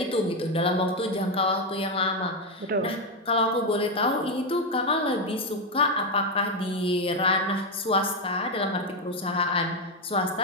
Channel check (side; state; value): both; normal; correlation 0.07